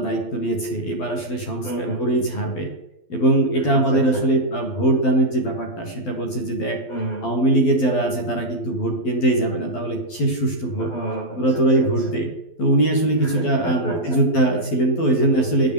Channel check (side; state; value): right; late; 12 ms